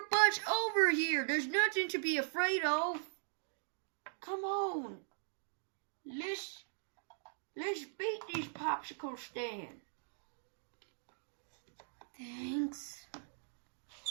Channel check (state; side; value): silent; left; digital silence